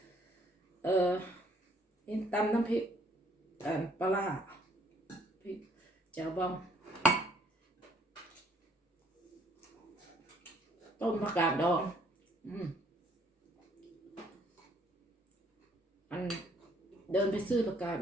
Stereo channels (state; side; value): normal; both; correlation 0.63